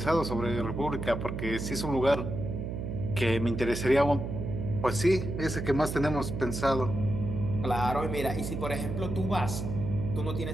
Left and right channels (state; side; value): noise; right; hum, 4 dB below the sound